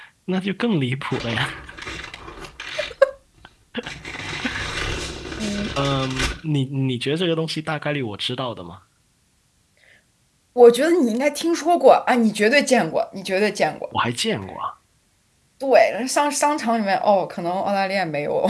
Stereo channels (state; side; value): identical; both; correlation 1.00